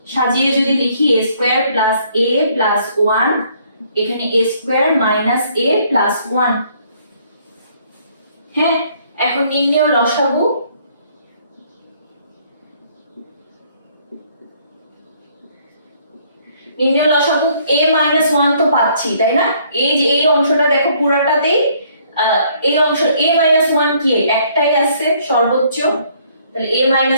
সাজিয়ে যদি লিখি a square plus a plus 1 এখানে a square minus a plus 1। হ্যাঁ, এখন নির্ণয় লসাগু, নির্ণয় লসাগু a minus 1 তো পাচ্ছি তাই না, এই যে এই অংশটা দেখো পুরাটাতেই এই অংশ a minus 1 কি একটাই আছে সর্বোচ্চ, তাহলে a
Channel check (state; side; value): inverted; both; correlation -0.64